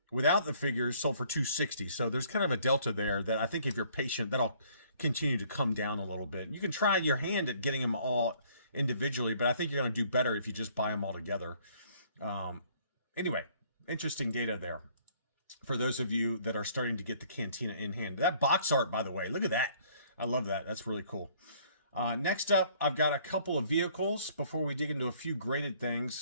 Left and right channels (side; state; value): both; inverted; correlation -0.60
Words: Without the figures, sold for $260. So there's kind of a delta there that I think if you're patient, that'll continue to come down a little bit. You can try your hand at getting them all individually, but I think you're going to do better if you just buy them all together. Anyway, interesting data there for those of you that are starting to get the Cantina in hand. That box art, by the way, look at that. I love that. That's really cool. Next up, I've got a couple of vehicles before we dig into a few graded